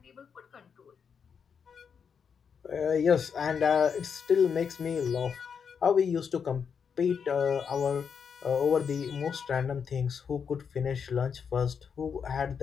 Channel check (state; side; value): quieter; right; 6.7 dB